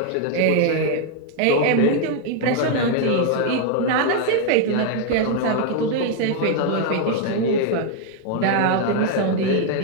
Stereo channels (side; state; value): both; different; correlation 0.00